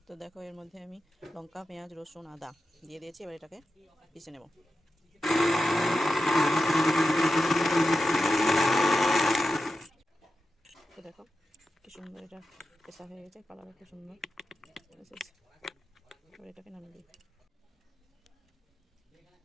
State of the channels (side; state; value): both; normal; correlation 0.91